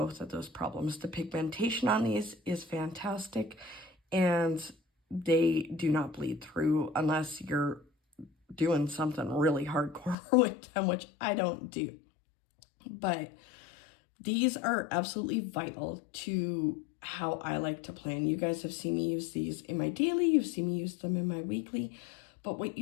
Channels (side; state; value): right; drops out; at 10.2 s